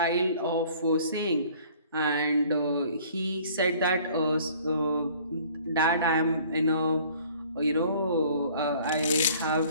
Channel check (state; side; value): inverted; both; correlation -0.53